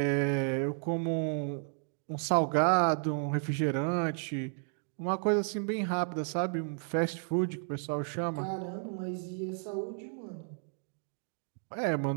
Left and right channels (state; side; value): silent; left; 56 dB below the other